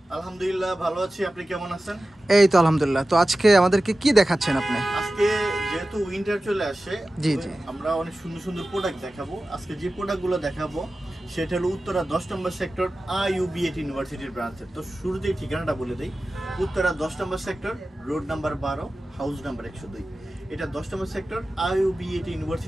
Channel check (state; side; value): normal; both; correlation 0.95